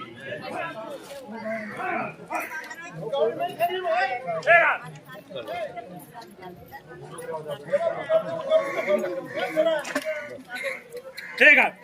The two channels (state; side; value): identical; both; correlation 1.00